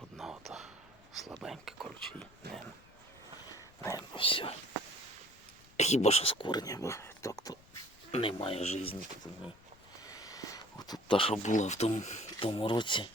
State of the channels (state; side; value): noise; left; rumble, 26 dB below the sound